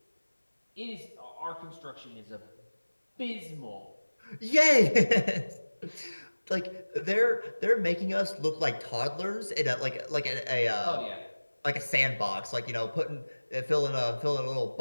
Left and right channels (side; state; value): both; inverted; correlation -1.00